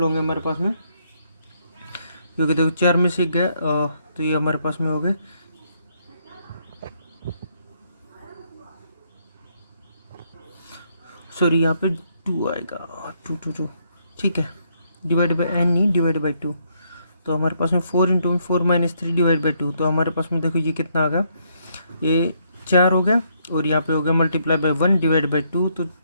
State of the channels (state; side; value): inverted; both; correlation -0.73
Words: होंगे हमारे पास में, क्योंकि देखो 4 में से गया, तो ये हमारे पास में हो गए, सॉरी यहाँ पे 2 आएगा, 2। ठीक है, डिवाइड बाई n नहीं, डिवाइड बाई 2। तो हमारे पास में 4 इंटू में 4-3 डिवाइड बाई 2। तो हमारे पास में देखो ये कितना आ गया, ये 4 हो गया और यहाँ पे हो गया मल्टीप्लाई बाई 1 डिवाइड बाई 2। तो